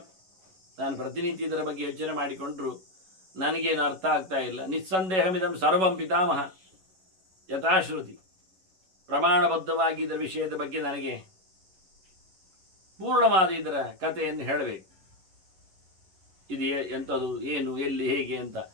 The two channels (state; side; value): late; left; 11 ms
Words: ನಾನು ಪ್ರತಿನಿತ್ಯ ಇದರ ಬಗ್ಗೆ ಯೋಚನೆ ಮಾಡಿಕೊಂಡ್ರು ನನಗೇನು ಅರ್ಥ ಆಗ್ತಾ ಇಲ್ಲ. ನಿಸ್ಸಂದೇಹಮಿದಂ ಸರ್ವಂ ಪಿತಾಮಹ ಯಥಾಶ್ರುತಿ. ಪ್ರಮಾಣಬದ್ಧವಾಗಿ ಇದರ ವಿಷಯದ ಬಗ್ಗೆ ನನಗೆ ಪೂರ್ಣವಾದ ಇದರ ಕಥೆಯನ್ನು ಹೇಳಬೇಕು. ಇದು ಎಂಥದ್ದು, ಏನು, ಎಲ್ಲಿ, ಹೇಗೆ ಅಂತ.